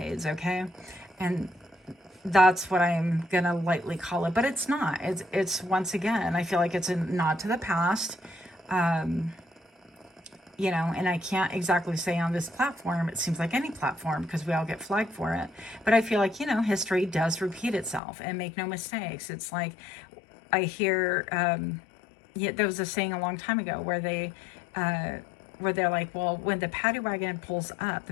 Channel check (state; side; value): drops out; right; at 18.0 s